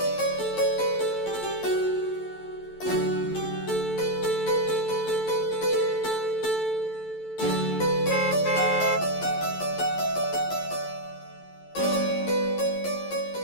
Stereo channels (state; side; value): late; right; 11 ms